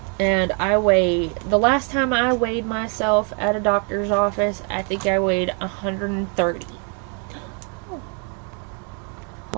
And the last time I weighed myself at a doctor's office, I think I weighed 130.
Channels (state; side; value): quieter; left; 38.4 dB